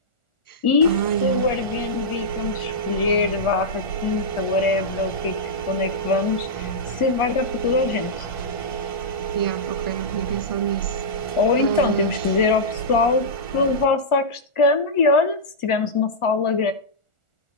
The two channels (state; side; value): late; right; 1.4 ms